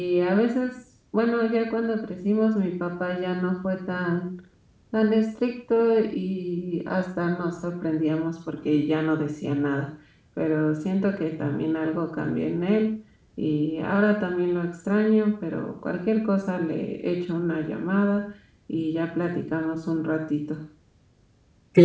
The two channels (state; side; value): identical; both; correlation 1.00